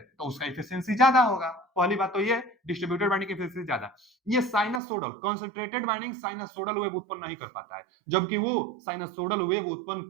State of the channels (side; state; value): left; drops out; at 4.8 s